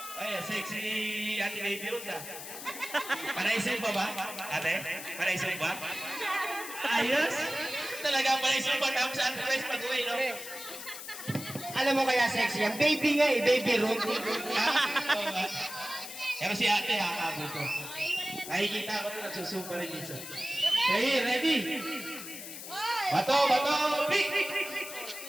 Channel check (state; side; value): noise; left; hiss, 10 dB below the sound